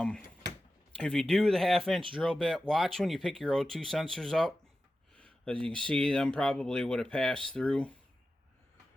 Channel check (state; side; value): normal; both; correlation 0.93